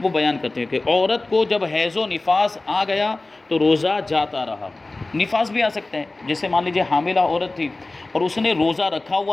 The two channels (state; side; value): quieter; right; 3.1 dB